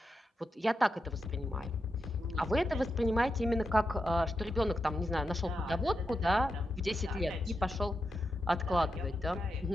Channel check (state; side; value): normal; both; correlation 0.87